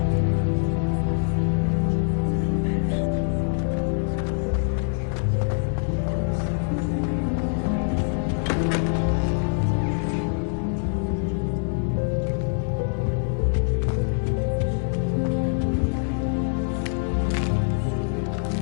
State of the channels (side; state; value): right; silent; 62 dB below the other